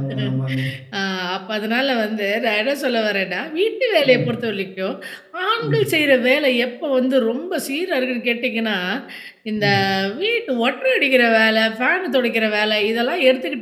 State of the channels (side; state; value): both; identical; correlation 1.00